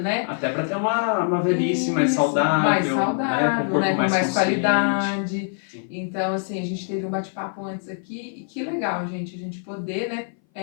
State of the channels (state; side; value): silent; right; 58 dB below the other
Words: Até para ter uma velhice mais Isso, saudável, né? Com o corpo né? Com mais consciente. qualidade. Sim. Então, assim, a gente teve um bate-papo antes aqui, e que legal, gente, a gente poder, né?